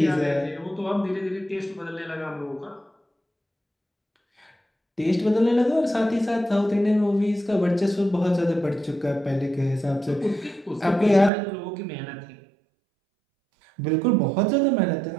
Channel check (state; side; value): drops out; left; at 11.3 s